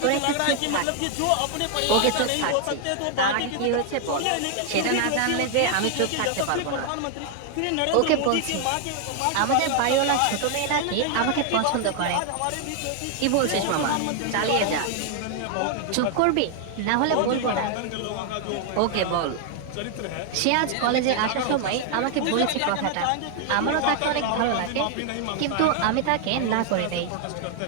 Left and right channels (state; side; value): different; both; correlation 0.00